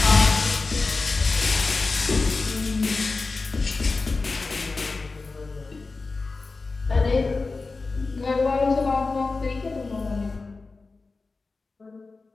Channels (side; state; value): right; quieter; 3.9 dB